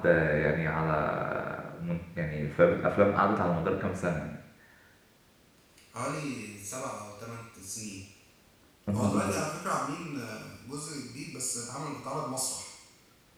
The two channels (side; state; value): both; identical; correlation 1.00